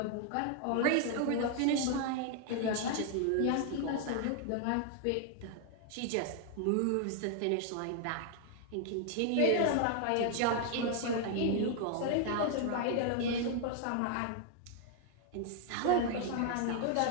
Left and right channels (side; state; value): both; different; correlation 0.00